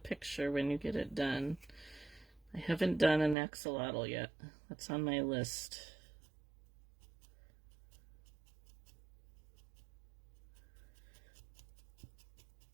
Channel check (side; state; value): left; drops out; at 3.4 s